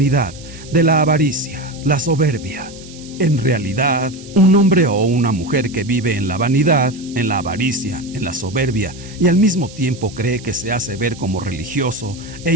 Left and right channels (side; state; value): right; noise; hiss, 19 dB below the sound